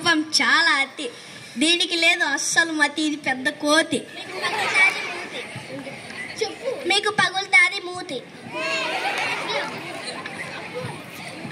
చాలా అతి. దీనికి లేదు అస్సలు మతి. ఇది పెద్ద కోతి. మీకు పగులుతాది మూతి.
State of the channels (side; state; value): both; identical; correlation 1.00